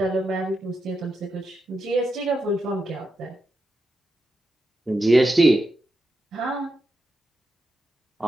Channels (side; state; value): both; normal; correlation 0.87